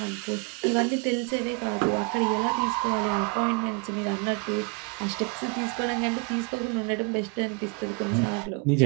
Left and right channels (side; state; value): left; quieter; 31.5 dB